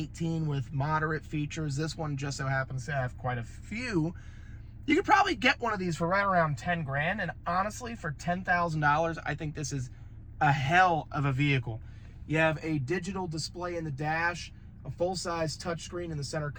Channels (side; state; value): both; identical; correlation 1.00